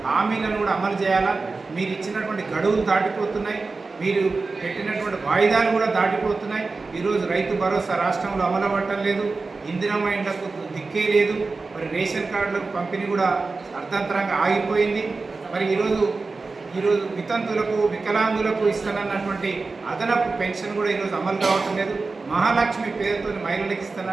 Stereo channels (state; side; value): quieter; left; 3.9 dB